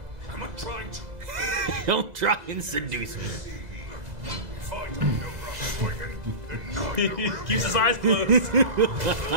Am I trying to? Don't try and seduce me. If I don't know where I'm swinging, then neither will Keeps you. his eyes closed.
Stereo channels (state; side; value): late; left; 2.0 ms